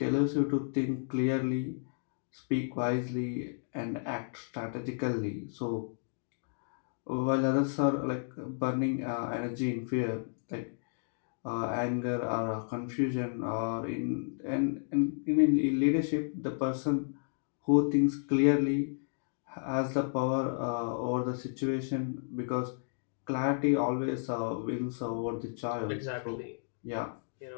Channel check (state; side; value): silent; right; digital silence